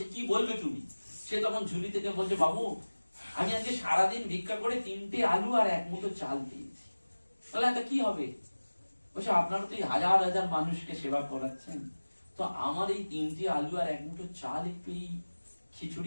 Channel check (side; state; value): both; inverted; correlation -1.00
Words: কি বলবে তুমি? সে তখন ঝুলি থেকে বলছে বাবু আমি আজকে সারাদিন ভিক্ষা করে 3টে আলু আর 1 মুঠো চাল দিয়েছি। বলে এটা কি হবে? বলছে আপনারা তো এই হাজার হাজার মানুষকে সেবা করাচ্ছেন, তো আমার এই 3টে আলু আর 1 মুঠো চাল একটু এই